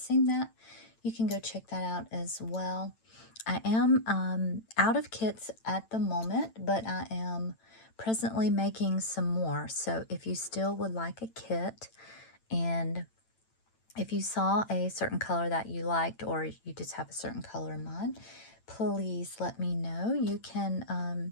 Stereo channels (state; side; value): late; right; 8.9 ms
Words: that, you can go check that out as well. I am out of kits at the moment, but I am presently making some more. So if you still would like a kit, and if you saw a certain color that you liked, or you just have a certain color in mind, please let me know. You